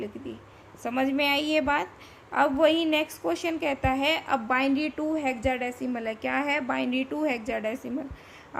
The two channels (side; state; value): both; identical; correlation 1.00